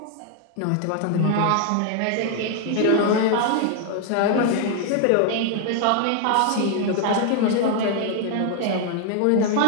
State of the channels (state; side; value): different; both; correlation 0.00